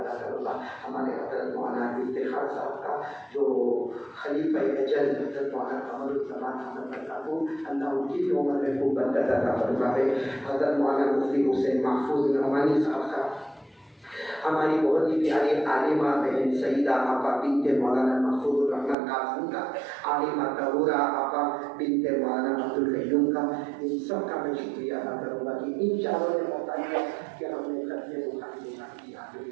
کروں گا ہمارے حضرت مولانا افتخار صاحب کا, جو خلیفہ اجل حضرت مولانا قمر الزمان احمد برکاتہ, اللہ ان کی بھی عمر میں خوب برکت عطا فرمائے. حضرت مولانا مفتی حسین محفوظ نعمانی صاحب کا, ہماری بہت ہی پیاری عالمہ بہن سیدہ آپا بنت مولانا محفوظ الرحمن قاسم کا, عالمہ طہورہ آپا بنت مولانا عبد القیوم کا, ان سب کا میں شکریہ ادا کروں گا کہ ان چاروں نے بتایا کہ ہم نے ختم بخاری کی آخری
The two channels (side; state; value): left; drops out; at 18.9 s